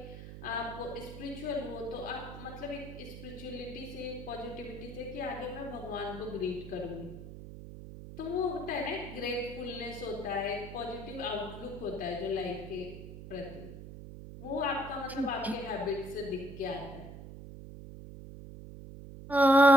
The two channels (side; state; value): right; noise; hum, 12 dB below the sound